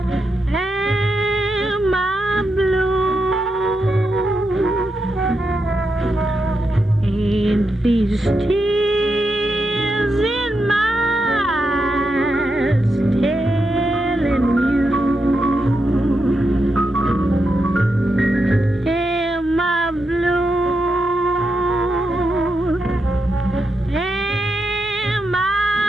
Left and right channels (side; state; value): both; normal; correlation 0.85